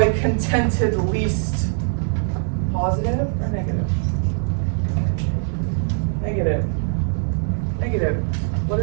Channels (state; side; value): silent; left; 61 dB below the other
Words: contented least. Positive or negative? Negative. Negative. What